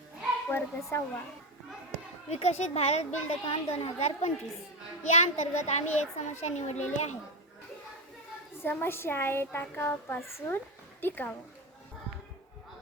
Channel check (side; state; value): both; normal; correlation 0.15